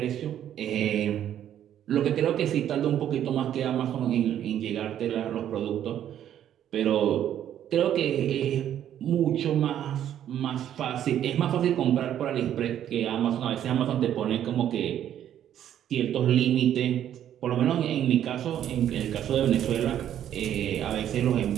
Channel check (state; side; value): quieter; left; 10.6 dB